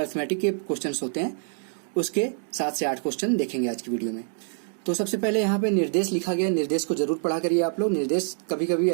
के क्वेश्चन होते हैं उसके 7 से 8 क्वेश्चन देखेंगे आज की वीडियो में। तो सबसे पहले यहाँ पे निर्देश लिखा गया, निर्देश को जरूर पढ़ा करिए आप लोग। निर्देश कभी कभी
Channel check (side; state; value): left; silent; 61 dB below the other